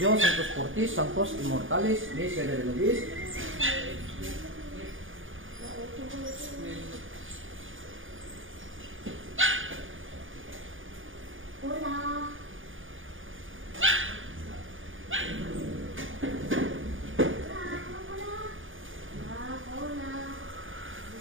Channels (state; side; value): late; left; 0.58 ms